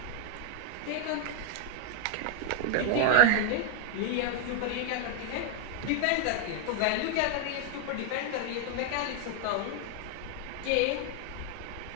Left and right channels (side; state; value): both; different; correlation 0.00